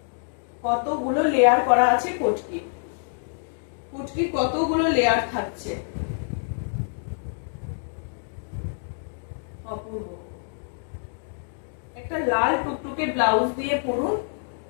কতগুলো লেয়ার করা আছে কোটকি, কোটকি কতগুলো লেয়ার থাকছে, অপূর্ব। একটা লাল টুকটুকে ব্লাউজ দিয়ে পরুন,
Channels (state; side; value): silent; right; digital silence